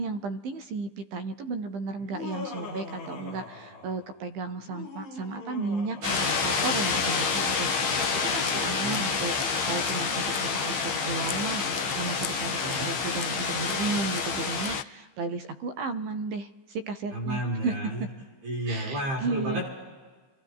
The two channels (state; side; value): late; left; 15 ms